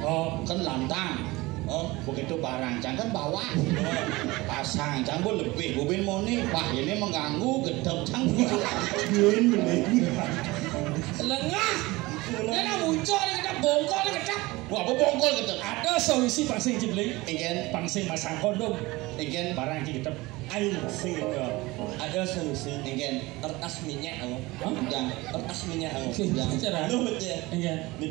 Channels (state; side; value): quieter; left; 21.3 dB